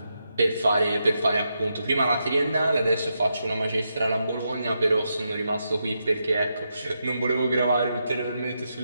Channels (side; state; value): both; inverted; correlation -0.84